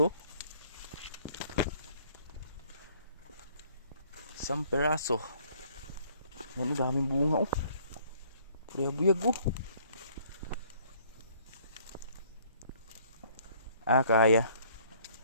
Isang piraso. Ano, daming bunga oh. Buyag oh.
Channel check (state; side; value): inverted; both; correlation -0.61